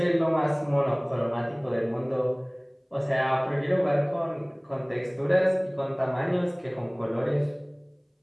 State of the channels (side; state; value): both; identical; correlation 1.00